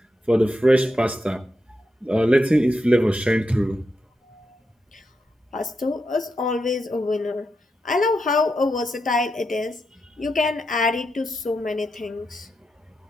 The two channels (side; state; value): both; normal; correlation 0.85